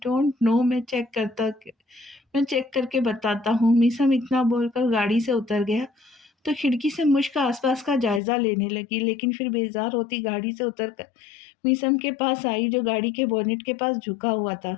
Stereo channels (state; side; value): drops out; right; at 8.2 s